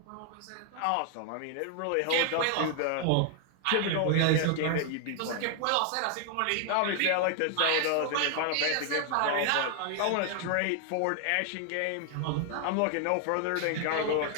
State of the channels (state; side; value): different; both; correlation 0.00